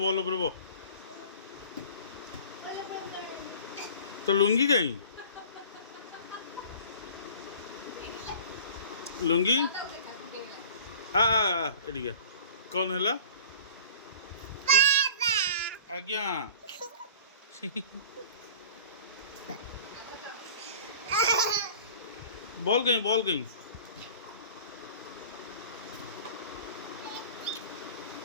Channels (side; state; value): both; inverted; correlation -0.42